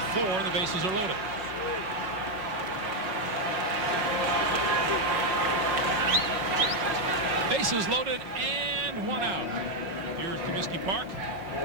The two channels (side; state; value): left; late; 5.4 ms